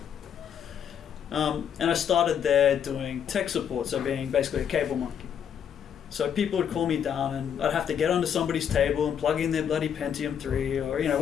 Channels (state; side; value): quieter; right; 8.4 dB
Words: And I started there doing tech support, so being basically a cable monkey. So people would call me down and I'd have to get onto somebody's table and plug in their bloody Pentium 3 or